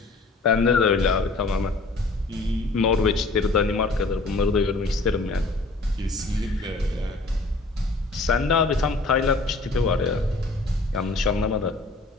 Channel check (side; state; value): right; quieter; 3.3 dB